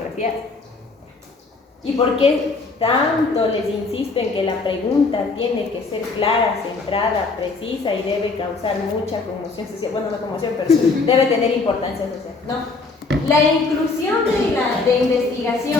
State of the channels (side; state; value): right; quieter; 3.9 dB